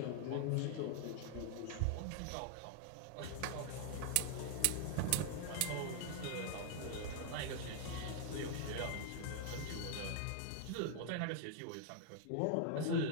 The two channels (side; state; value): both; different; correlation 0.00